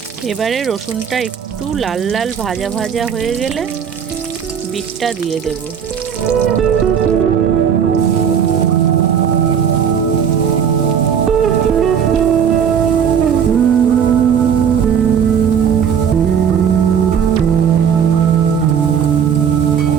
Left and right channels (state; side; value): quieter; left; 7.7 dB